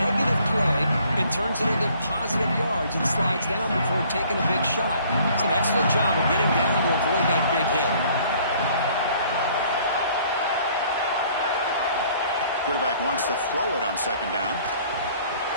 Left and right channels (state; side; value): inverted; both; correlation -0.58